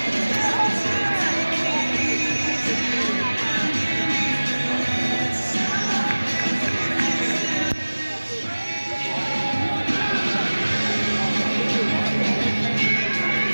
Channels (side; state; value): both; inverted; correlation -1.00